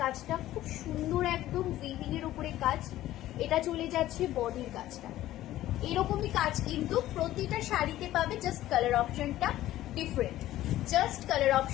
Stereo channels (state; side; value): quieter; right; 14.5 dB